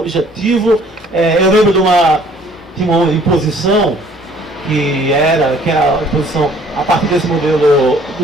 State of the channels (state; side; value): normal; both; correlation 0.57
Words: Eu lembro tinha uma imposição que era a imposição a partir desse modelo